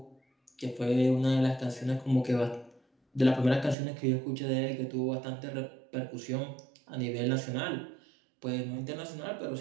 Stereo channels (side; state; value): left; drops out; at 3.8 s